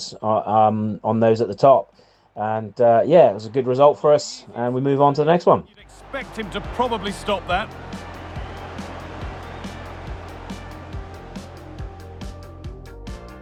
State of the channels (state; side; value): identical; both; correlation 1.00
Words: on those at the top. And it was a good result for us, and we move on to the next one. Expect him to probably stop that.